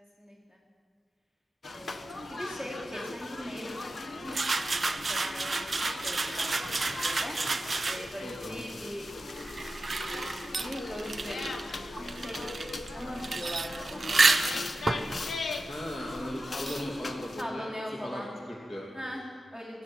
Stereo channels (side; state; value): both; normal; correlation 0.92